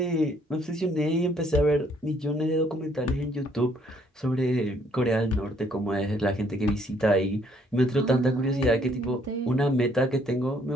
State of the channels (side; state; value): both; normal; correlation 0.66